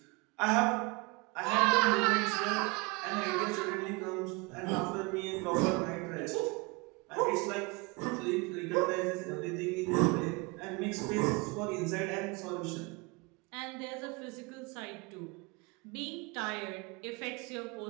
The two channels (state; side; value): quieter; left; 27.5 dB